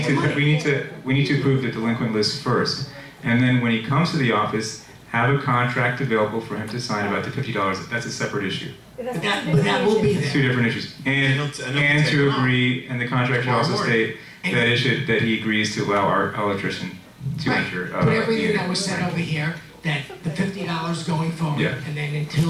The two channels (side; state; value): both; identical; correlation 1.00